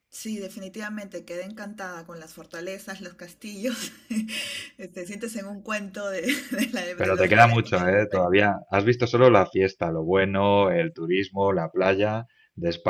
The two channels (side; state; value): both; identical; correlation 1.00